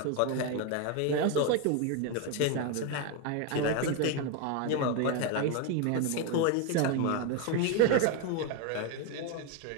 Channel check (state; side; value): different; both; correlation 0.02